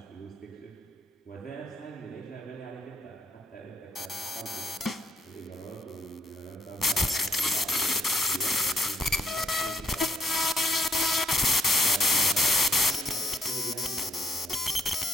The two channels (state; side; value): normal; both; correlation 0.71